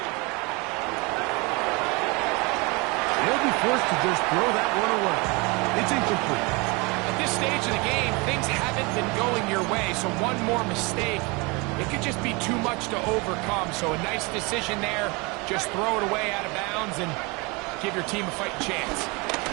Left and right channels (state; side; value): quieter; left; 27.4 dB